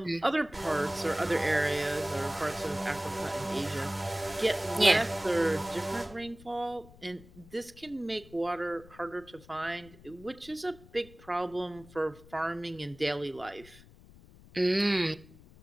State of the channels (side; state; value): left; noise; rumble, 22 dB below the sound